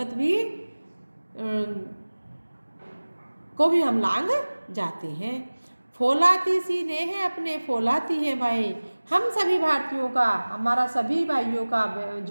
भी को भी हम लांग जाते हैं। फौलाती सी ने है अपने, फौलाती हैं भाई। हम सभी भारतीयों का, हमारा सभी भाइयों का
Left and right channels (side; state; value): both; inverted; correlation -1.00